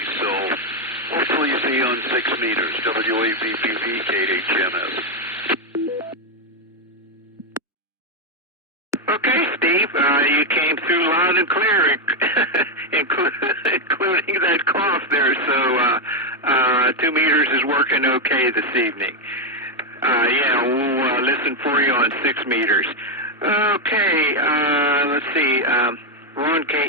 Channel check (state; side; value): normal; both; correlation 0.04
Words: So hopefully see you on 6 meters. W8VPV, KHMS. Okay, Steve, you came through loud and clear, including that cough there. So 2 meters is working okay this evening. We'll listen for you on 6 meters. Okay, let's see. Ron